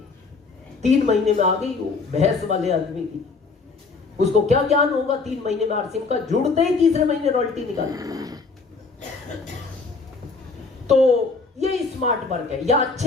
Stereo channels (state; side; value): quieter; right; 4.2 dB